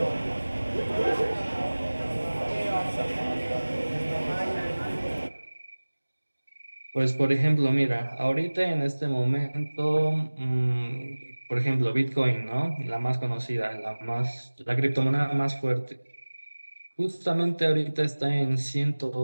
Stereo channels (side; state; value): both; inverted; correlation -1.00